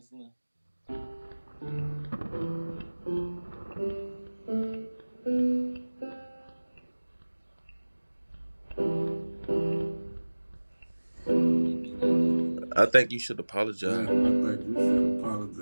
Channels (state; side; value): inverted; both; correlation -1.00